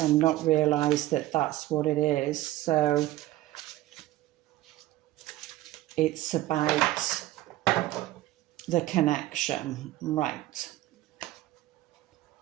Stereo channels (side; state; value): left; quieter; 15.9 dB